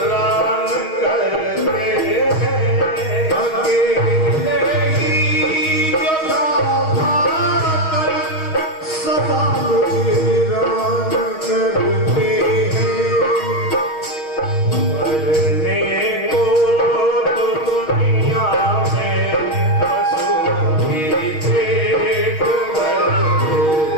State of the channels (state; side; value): late; right; 6.3 ms